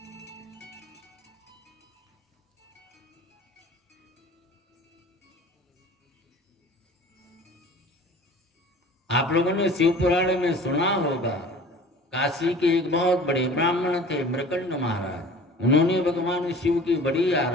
आप लोगों ने शिव पुराण में सुना होगा, काशी के एक बहुत बड़े ब्राह्मण थे मृकंड महाराज, उन्होंने भगवान शिव की बड़ी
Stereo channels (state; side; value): normal; both; correlation 0.43